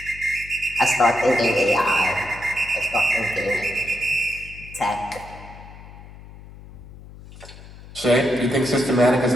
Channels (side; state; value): left; noise; hum, 18 dB below the sound